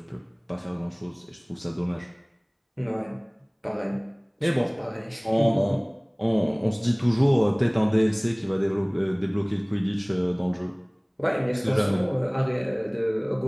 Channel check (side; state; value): both; identical; correlation 1.00